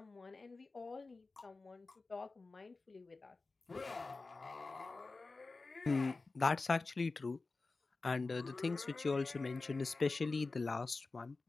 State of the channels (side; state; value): right; quieter; 3.7 dB